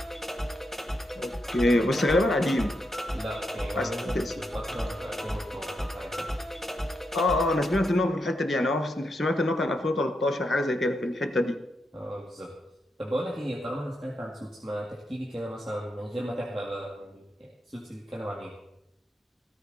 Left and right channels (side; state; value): both; normal; correlation 0.83